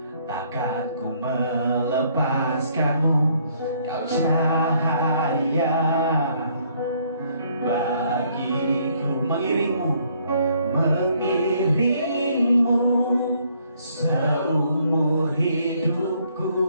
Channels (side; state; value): both; inverted; correlation -0.66